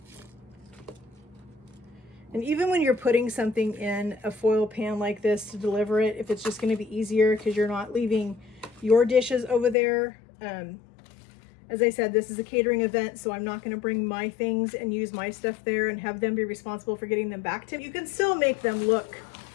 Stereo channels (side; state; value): right; drops out; at 9.8 s